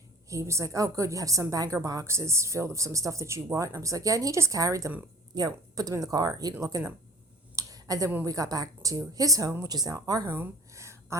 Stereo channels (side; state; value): both; normal; correlation 0.45